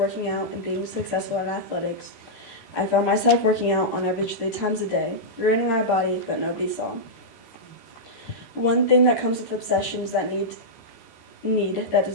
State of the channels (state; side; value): late; right; 13 ms